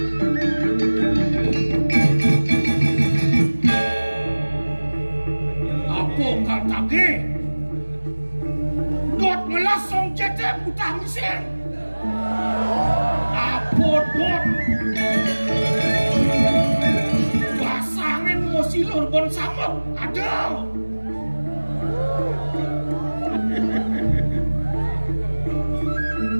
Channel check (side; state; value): both; inverted; correlation -1.00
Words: apa kaltage dot melasong cecep utang miseng apa dot basangin mo silur bon samok ada